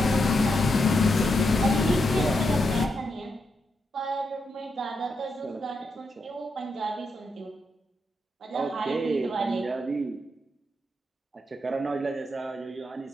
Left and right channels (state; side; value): normal; both; correlation 0.83